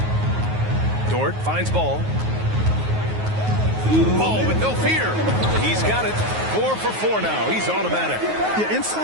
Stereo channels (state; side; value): late; left; 9.4 ms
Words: Dort finds Ball. Ball with no fear. He's got it. 4 for 4 now. He's automatic. Yeah,